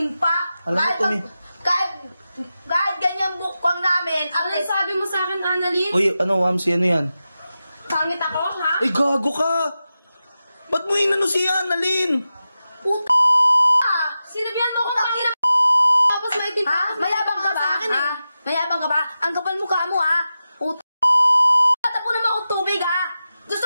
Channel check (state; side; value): inverted; both; correlation -0.92